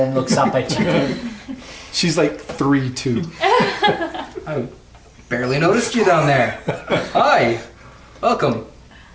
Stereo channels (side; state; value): both; identical; correlation 1.00